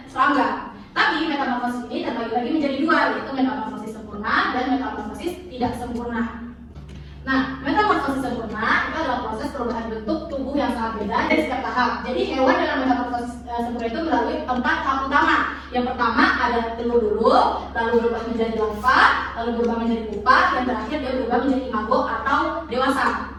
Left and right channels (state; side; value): identical; both; correlation 1.00